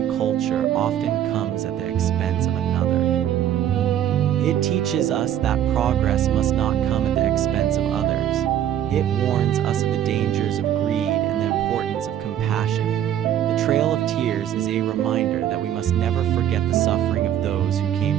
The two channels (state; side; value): quieter; left; 10.6 dB